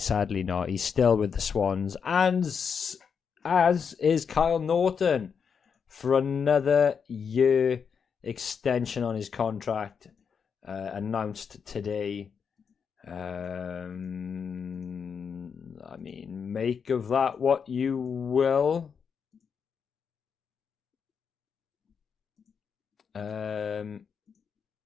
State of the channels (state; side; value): quieter; right; 6.5 dB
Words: Sadly not. He's still with the Swans. And as is Kyle Norton for another year extension on his contract announced today. I mean, make of that what you will. I